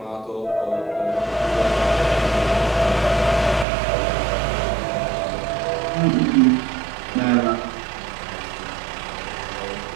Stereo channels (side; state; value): left; drops out; at 3.7 s